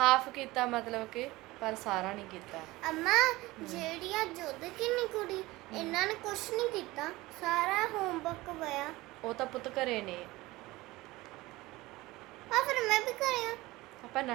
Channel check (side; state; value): left; quieter; 19.8 dB